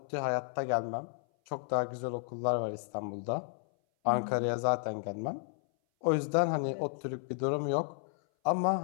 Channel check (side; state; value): right; silent; 56 dB below the other